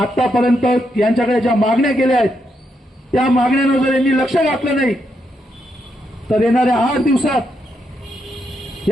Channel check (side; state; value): both; normal; correlation 0.80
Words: यांच्याकडे ज्या मागण्या केल्या आहेत त्या मागण्यांवर जर यांनी लक्ष घातलं नाही तर येणाऱ्या 8 दिवसात